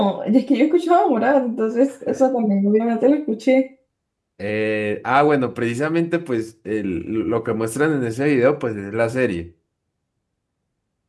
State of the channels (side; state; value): both; identical; correlation 1.00